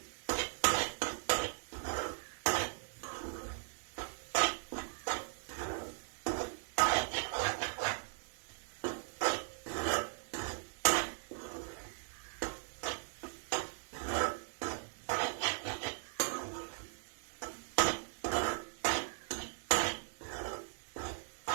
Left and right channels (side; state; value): left; silent; digital silence